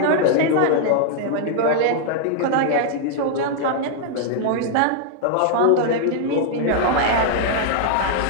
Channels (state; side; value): different; both; correlation -0.01